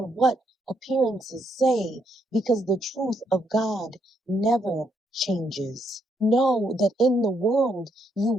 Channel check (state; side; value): normal; both; correlation 0.75